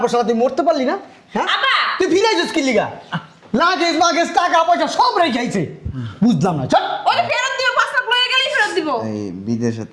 পর শালা তুই মরতে পারলি না হ্যাঁ আব্বা তুই ফিরাই যাস কি লিগা লাগেজ মাগেজ টাকা পয়সা সব রেখে আইছে বুঝলাম না চল ওই ফেরত দিও 5 লাখ লয়ে গেলেই ফেরত দিব এই বিদেশের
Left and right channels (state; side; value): identical; both; correlation 1.00